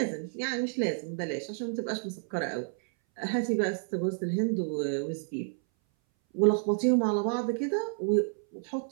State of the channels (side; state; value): left; silent; 58 dB below the other